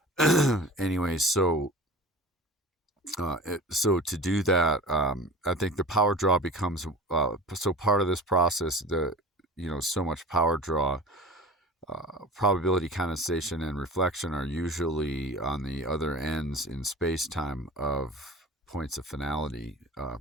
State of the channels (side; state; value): both; normal; correlation 0.37